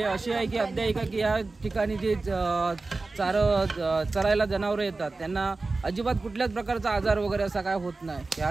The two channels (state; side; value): quieter; left; 3.6 dB